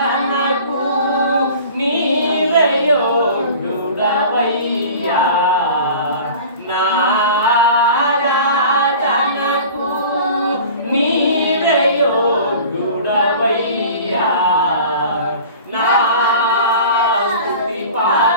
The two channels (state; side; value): inverted; both; correlation -0.41